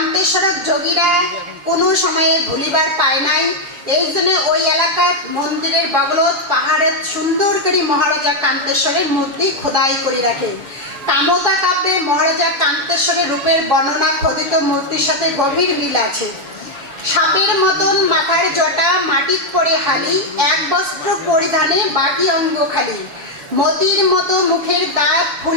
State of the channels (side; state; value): left; late; 7.2 ms